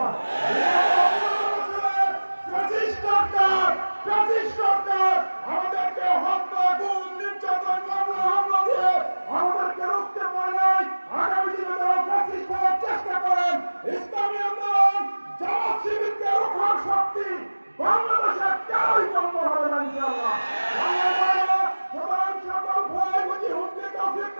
সরকার আমাদেরকে হত্যা, গুম, নির্যাতন, মামলা হামলা দিয়ে আমাদেরকে রুখতে পারে নাই। আগামী দিনে তারা ফ্যাসিস্ট হওয়ার চেষ্টা করেন। ইসলামী আন্দোলন জামাত শিবিরকে রোখার শক্তি বাংলাদেশে কেউই বন্ধ হবে না ইনশাআল্লাহ। সুতরাং সকল ভয় বুঝি হুমকি তৌফিক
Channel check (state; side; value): inverted; both; correlation -1.00